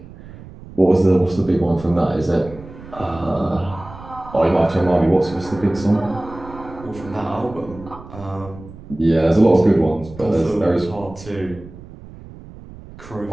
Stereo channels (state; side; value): noise; right; rumble, 17 dB below the sound